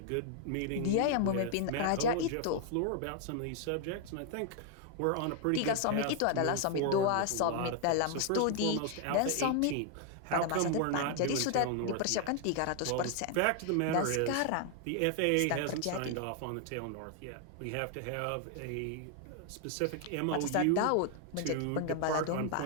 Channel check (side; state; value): both; different; correlation 0.00